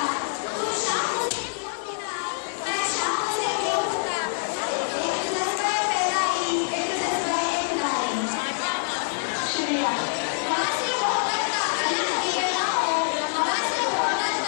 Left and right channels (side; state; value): right; silent; digital silence